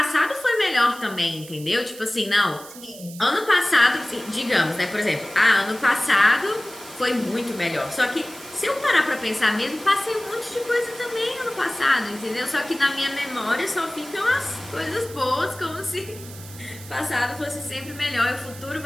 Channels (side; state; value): right; noise; hiss, 17 dB below the sound